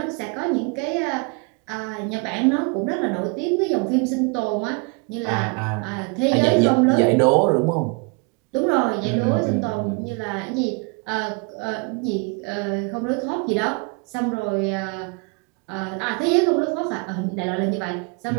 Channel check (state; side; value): quieter; left; 32.3 dB